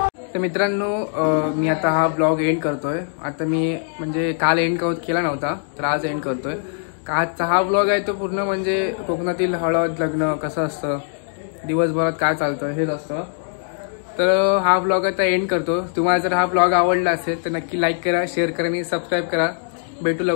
तर मित्रांनो मी आता हा ब्लॉग एंड करतोय. आता मी म्हणजे काल एंड केला नव्हता तर आज एंड करतोय. आजचा हा ब्लॉग आहे तो पूर्ण म्हणजे कोकणातील हळद लग्न कसं असतं दिवसभरात काय चालतं हेच असतं. तर हा ब्लॉग आता एंड करतो. तुम्हाला जर हा ब्लॉग आवडला असेल तर नक्की लाईक करा, शेअर करा आणि सबस्क्राईब करा. भेटू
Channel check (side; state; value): right; silent; 65 dB below the other